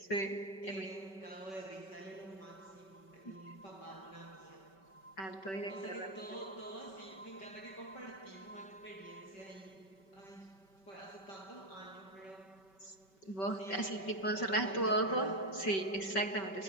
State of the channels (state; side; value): late; right; 5.2 ms